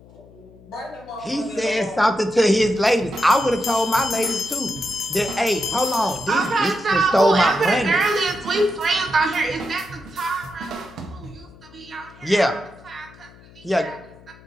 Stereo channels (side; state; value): left; noise; hum, 23 dB below the sound